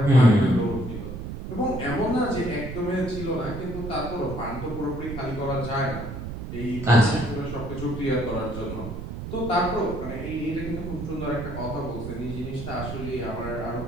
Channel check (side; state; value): right; noise; rumble, 7 dB below the sound